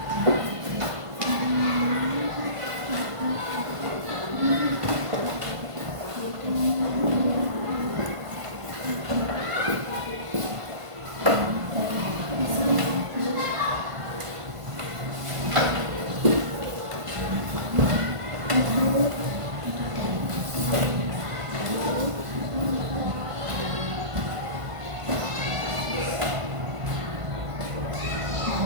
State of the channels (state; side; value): late; left; 1.5 ms